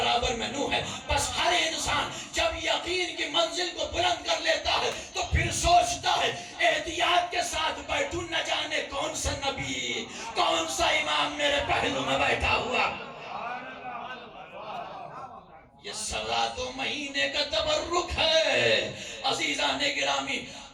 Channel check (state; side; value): identical; both; correlation 1.00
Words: میں نوح ہے. بس ہر انسان جب یقین کی منزل کو بلند کر لیتا ہے تو پھر سوچتا ہے احتیاط کے ساتھ بیٹھوں، نہ جانے کون سا نبی، کون سا امام میرے پہلو میں بیٹھا ہوا. یہ 2.25 مہینے کا تبرک ہے. عزیزان گرامی،